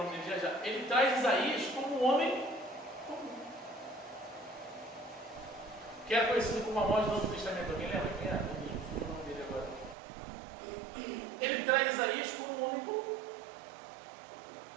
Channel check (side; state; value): left; drops out; at 10.0 s